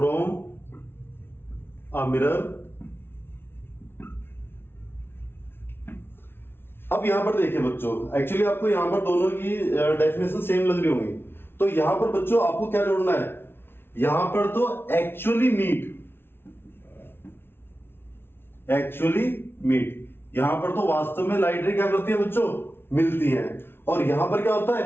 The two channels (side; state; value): right; late; 0.11 ms